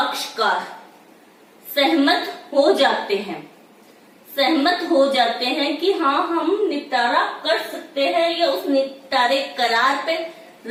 सहमत हो जाते हैं कि हाँ हम निपटारा कर सकते हैं या उस निपटारे करार पे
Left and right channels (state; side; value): identical; both; correlation 1.00